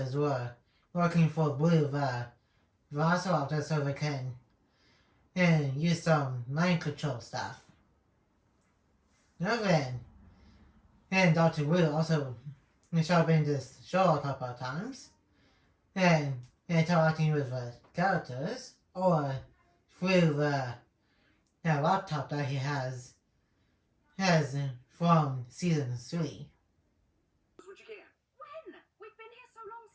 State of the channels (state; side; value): identical; both; correlation 1.00